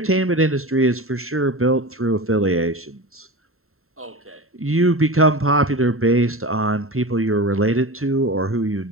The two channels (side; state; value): left; late; 0.62 ms